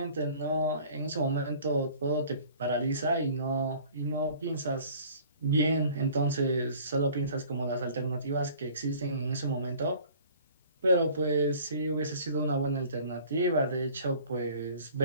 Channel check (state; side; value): inverted; both; correlation -0.50